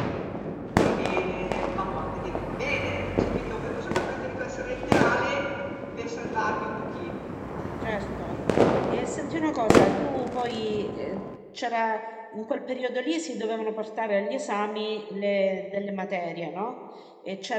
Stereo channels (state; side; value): identical; both; correlation 1.00